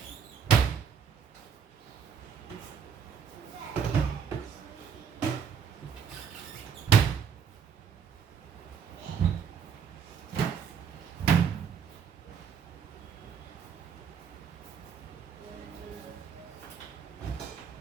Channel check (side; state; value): left; quieter; 7.1 dB